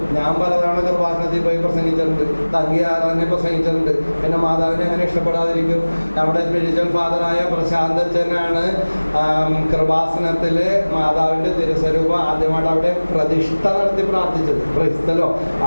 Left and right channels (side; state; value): both; inverted; correlation -1.00